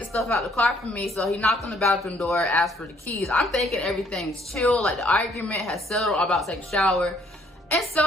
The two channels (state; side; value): normal; both; correlation 0.64